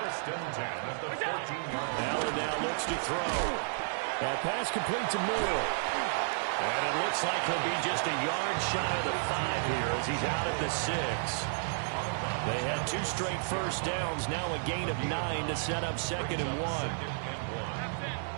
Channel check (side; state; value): left; silent; 56 dB below the other